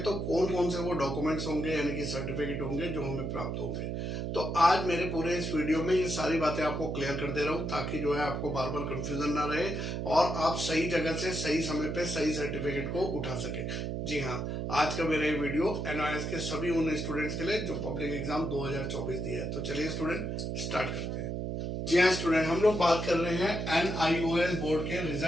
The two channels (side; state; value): right; noise; hum, 3 dB below the sound